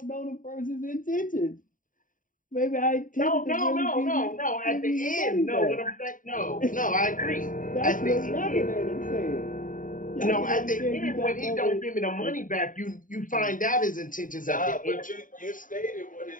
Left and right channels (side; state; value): right; late; 0.39 ms